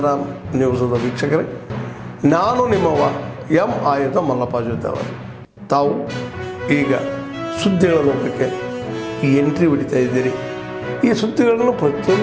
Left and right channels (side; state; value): both; identical; correlation 1.00